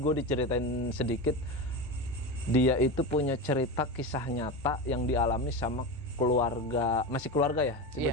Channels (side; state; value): both; normal; correlation 0.21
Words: diceritain sedikit. Dia itu punya cerita kisah nyata yang dialami sama keluarga, masih keluarga ya